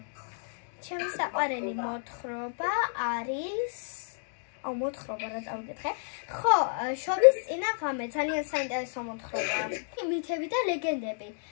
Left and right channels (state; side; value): silent; right; digital silence